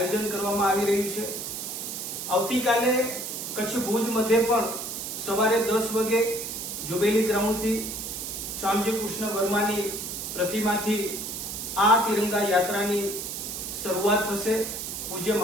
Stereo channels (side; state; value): right; noise; hiss, 6 dB below the sound